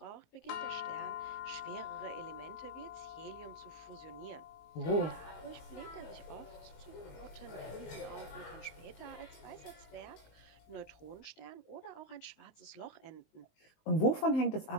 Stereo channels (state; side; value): late; right; 19 ms